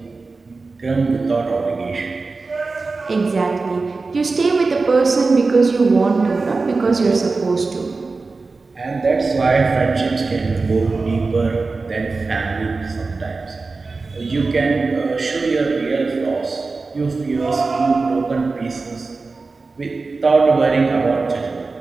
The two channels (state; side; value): quieter; left; 3.9 dB